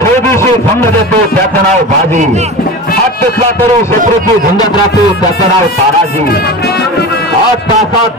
फौजीशी भंग देतो, त्याचं नाव बाजी. हात टेकला तरी शत्रूची झुंजत राहतो, त्याचं नाव ताराजी. 8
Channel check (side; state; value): both; normal; correlation 0.30